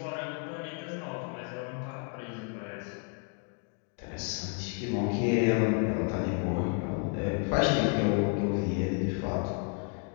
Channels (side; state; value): right; quieter; 39.9 dB